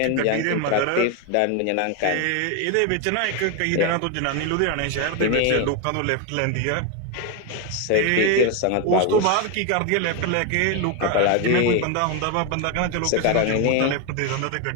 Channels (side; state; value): both; different; correlation 0.02